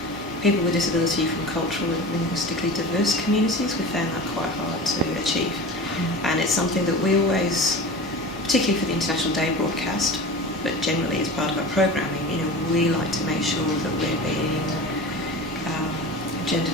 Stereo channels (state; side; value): normal; both; correlation 0.33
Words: people with disability from cultural and linguistically diverse communities. We found that quite hard to achieve. And it's something that we always, particularly for the International Day broadcast, but generally as part of our programming, we like to make sure that we're being gender